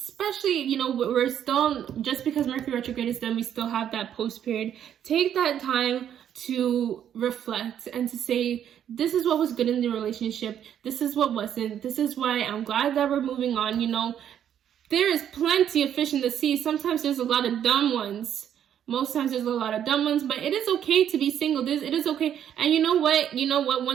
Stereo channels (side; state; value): left; quieter; 9.7 dB